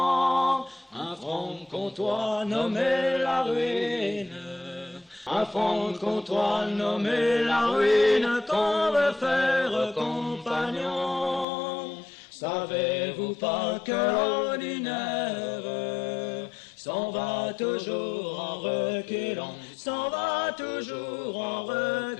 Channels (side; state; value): right; drops out; at 11.5 s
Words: un franc-comtois nommé la ruine. Un franc-comtois nommé la ruine qu'on veut faire compagnon. Savez-vous pas que l'ordinaire s'en va toujours en reculant, s'en va toujours en